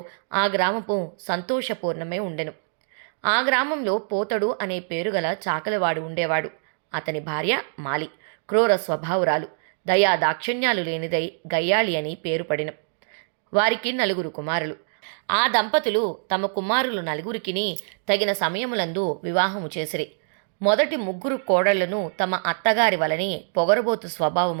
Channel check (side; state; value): left; silent; digital silence